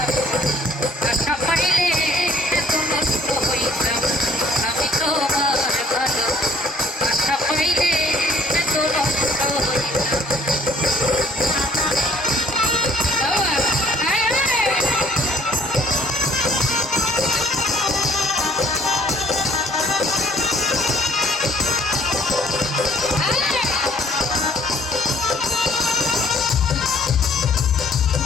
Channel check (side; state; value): both; normal; correlation 0.59